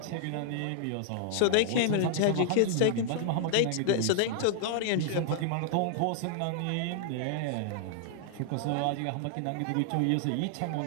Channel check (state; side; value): different; both; correlation 0.00